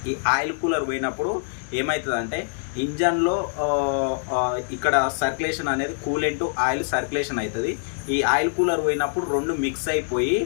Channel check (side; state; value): right; silent; digital silence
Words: ఈ ఆయిల్ కూలర్ పోయినప్పుడు ఏమవుతుందంటే ఇంజన్లో ఇక్కడ సర్క్యులేషన్ అనేది కూలెంట్ ఆయిల్ సర్క్యులేషన్ అవుతుంది. ఈ ఆయిల్ కూలర్ పోయినప్పుడు రెండు మిక్స్ అయిపోయి